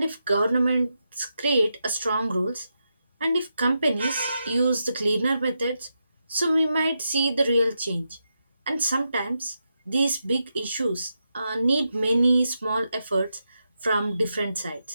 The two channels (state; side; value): inverted; both; correlation -0.86